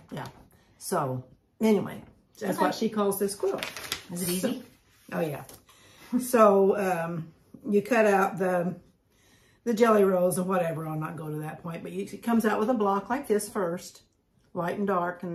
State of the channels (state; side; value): identical; both; correlation 1.00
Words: Yeah. So anyway, that's what she calls this quilt. Is it easy? Oh yeah. So you cut out the jelly rolls or whatever. I'll not go to that point, but it comes out with a block like this first, light and dark, and